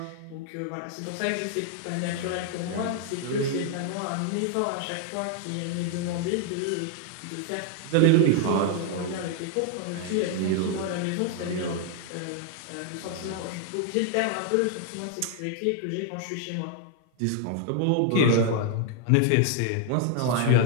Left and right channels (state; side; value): different; both; correlation 0.00